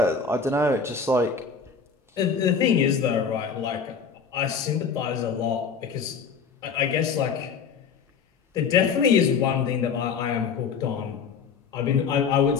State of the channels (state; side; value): quieter; right; 6.0 dB